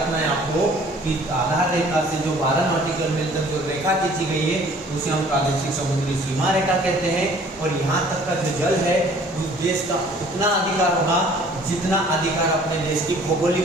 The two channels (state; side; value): normal; both; correlation 0.53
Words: है आपको कि आधार रेखा से जो 12 नॉटिकल मील तक जो रेखा खींची गई है उसे हम प्रादेशिक समुद्री सीमा रेखा कहते हैं। और यहाँ तक का जो जल है उस देश का उतना अधिकार होगा जितना अधिकार अपने देश की